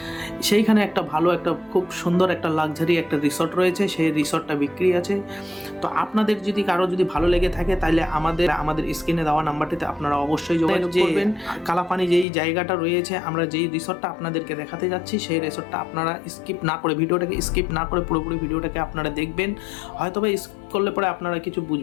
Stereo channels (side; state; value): right; drops out; at 12.2 s